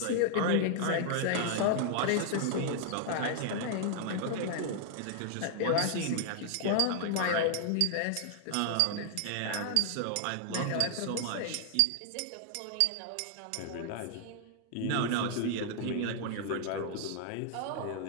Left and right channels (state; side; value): different; both; correlation 0.00